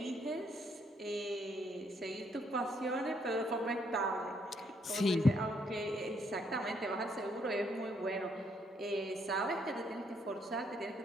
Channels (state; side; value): normal; both; correlation 0.71